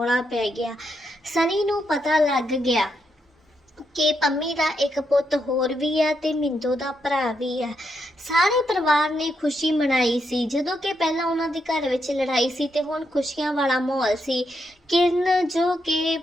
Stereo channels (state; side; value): normal; both; correlation 0.81